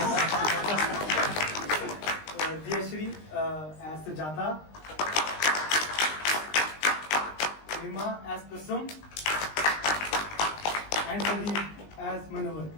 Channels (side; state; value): right; late; 20 ms